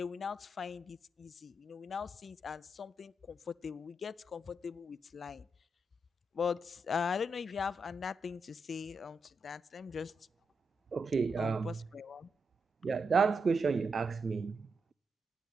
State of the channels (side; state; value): both; normal; correlation 0.84